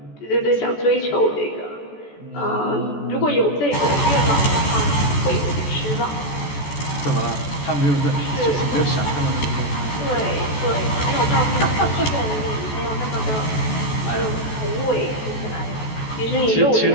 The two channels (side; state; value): right; late; 14 ms